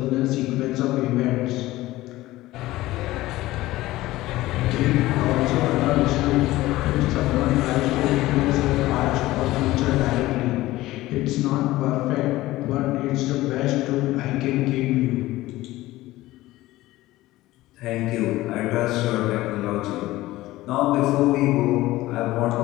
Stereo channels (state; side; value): quieter; right; 17.3 dB